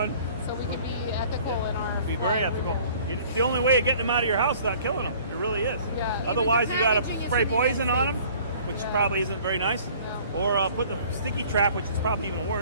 so we can be ethical in our. be very ethical. It's the only way of getting them out of your house without killing them. It really is. Yeah. Otherwise, Even you the got to packaging is spray something poison that's on them, which probably isn't very nice, or put the sticky trap, which is probably even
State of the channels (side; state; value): both; inverted; correlation -0.52